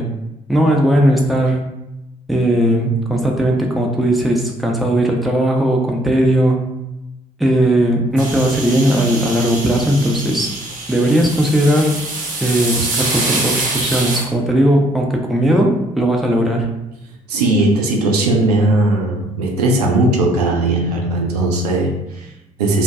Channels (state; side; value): normal; both; correlation 0.65